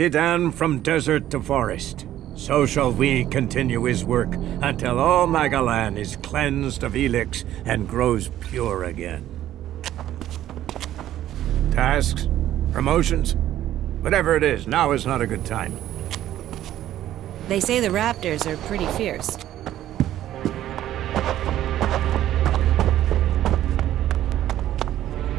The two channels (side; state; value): left; quieter; 12.6 dB